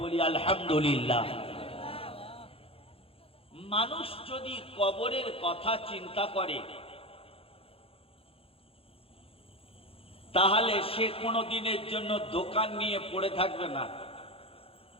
বলি আলহামদুলিল্লাহ। মানুষ যদি কবরের কথা চিন্তা করে তাহলে সে কোনো দিনের জন্য দোকান নিয়ে পড়ে থাকবে না,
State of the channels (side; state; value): right; late; 0.27 ms